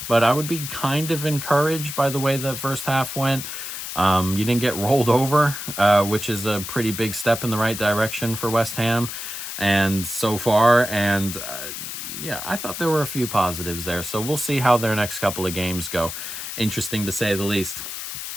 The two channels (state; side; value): noise; left; hiss, 7 dB below the sound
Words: But I would be kind of encouraged by the way the first half went. You didn't get rolled over, which is a pretty big step in the right direction for West Ham and so far. And I thought there were a few positives there. So we'll see how their next couple of games go. Interesting to say the least.